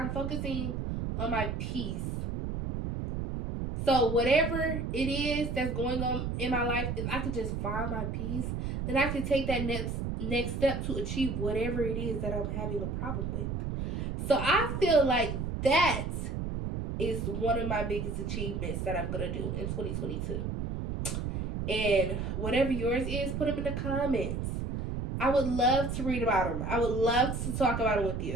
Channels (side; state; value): right; noise; rumble, 3 dB below the sound